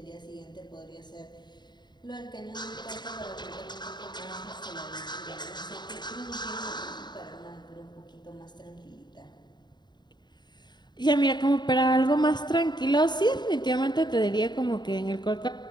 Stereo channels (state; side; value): late; right; 0.21 ms